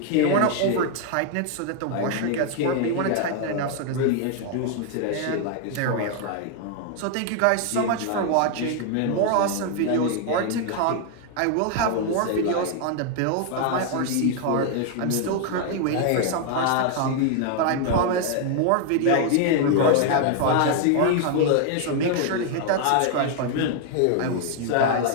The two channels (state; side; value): different; both; correlation 0.00